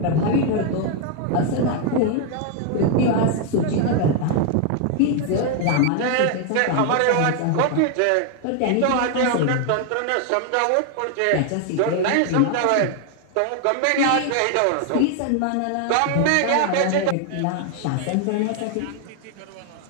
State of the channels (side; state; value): both; different; correlation 0.00